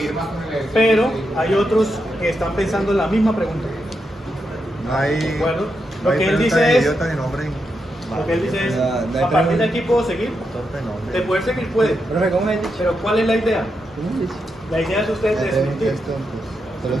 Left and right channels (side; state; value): both; normal; correlation 0.84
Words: pero hay otros que están pensando en la misma pregunta. No hay. ¿De acuerdo? No Lo hay que él pregunta dice de es, idiota ni nombre. lo que él dice es, No hay a partir de pregunta. aquí puedo seguir. Torpe nombre. De poder seguir puede, Profe, ¿cómo me dicho? pero ¿cuál es la idea? ¿Cómo dice? La idea es usted desmentir. Es tontos. Son los